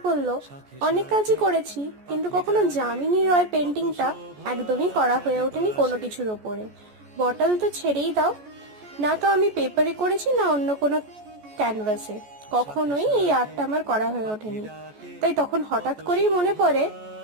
পড়লো, অনেক কাজই করেছি কিন্তু কখনো যামিনী রয় পেন্টিংটা একদমই করা হয়ে ওঠেনি কোনো কিছুর ওপরে। বটল তো ছেড়েই দাও, না তো আমি পেপারে করেছি না অন্য কোনো ক্যানভাসে, কখনোই এই আর্টটা আমার করা হয়ে ওঠেনি। তাই তখন হঠাৎ করেই মনে পড়ে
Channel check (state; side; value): late; left; 14 ms